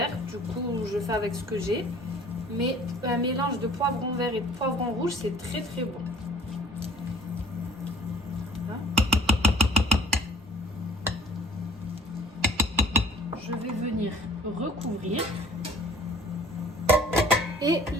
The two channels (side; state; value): both; normal; correlation 0.51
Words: du coup, je fais avec ce que j'ai. Mais un mélange de poivron vert et de poivron rouge, c'est très très bon. Voilà. Je vais venir recouvrir et